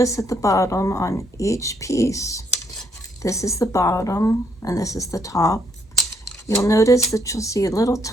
at the bottom on each piece, this is the bottom and this is the top. You'll notice that you'll see a little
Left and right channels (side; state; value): both; normal; correlation 0.72